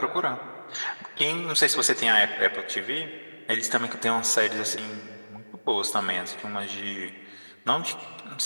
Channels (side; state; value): both; inverted; correlation -1.00